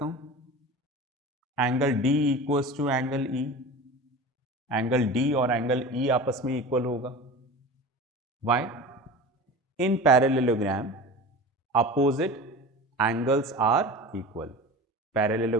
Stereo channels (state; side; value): normal; both; correlation 0.34